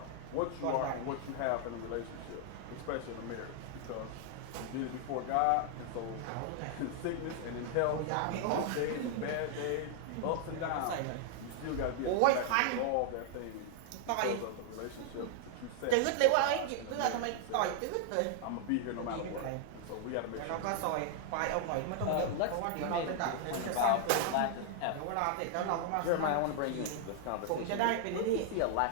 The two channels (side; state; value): both; different; correlation 0.00